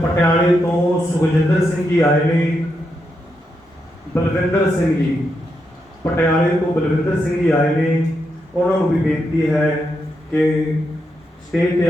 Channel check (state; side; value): normal; both; correlation 0.83